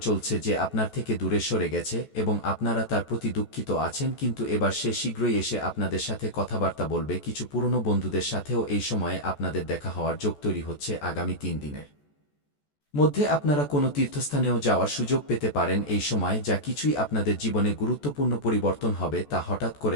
চলছে যে আপনার থেকে দূরে সরে গেছে এবং আপনারা তার প্রতি দুঃখিত আছেন, কিন্তু এবার সে শীঘ্রই এসে আপনাদের সাথে কথাবার্তা বলবে। কিছু পুরনো বন্ধুদের সাথেও এই সময়ে আপনাদের দেখা হওয়ার যোগ তৈরি হচ্ছে। আগামী 3 দিনের মধ্যে আপনারা কোনো তীর্থস্থানেও যাওয়ার সুযোগ পেতে পারেন এই সময়। যা কিছুই আপনাদের জীবনে গুরুত্বপূর্ণ পরিবর্তন হবে তা হঠাৎ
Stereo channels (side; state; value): right; late; 14 ms